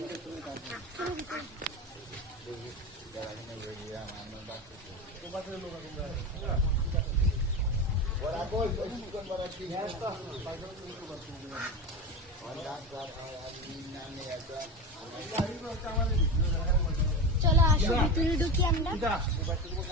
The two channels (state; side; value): normal; both; correlation 0.23